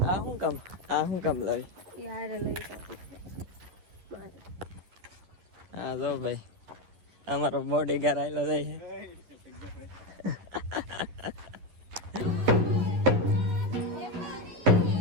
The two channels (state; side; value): late; left; 11 ms